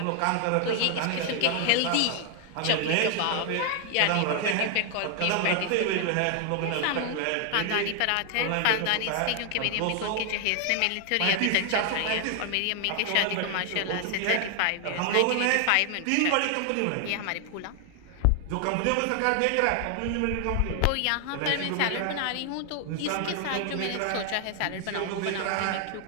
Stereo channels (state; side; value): different; both; correlation 0.00